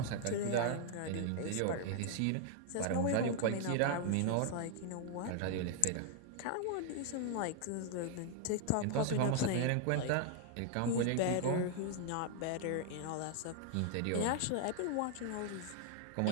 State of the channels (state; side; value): different; both; correlation 0.00